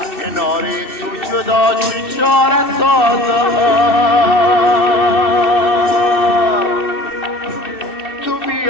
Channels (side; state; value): right; late; 2.9 ms